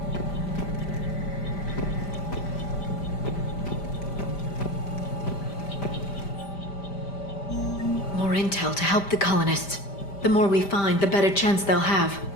More intel to help the colonists. The more we find, the better chance they'll have.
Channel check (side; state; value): right; late; 5.1 ms